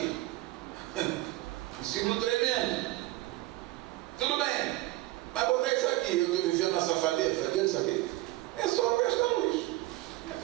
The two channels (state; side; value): quieter; left; 18.2 dB